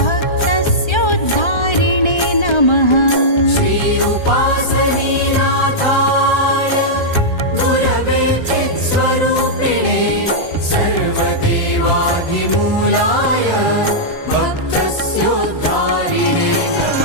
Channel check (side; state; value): right; late; 1.3 ms